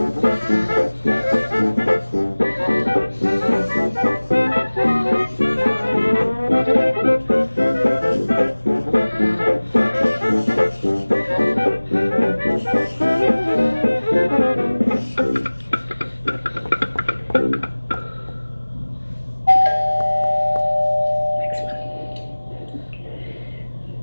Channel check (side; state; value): both; inverted; correlation -1.00